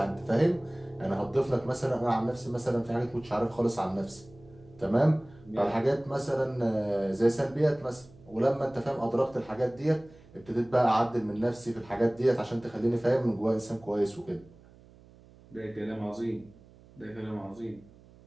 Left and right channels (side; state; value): right; noise; hum, 24 dB below the sound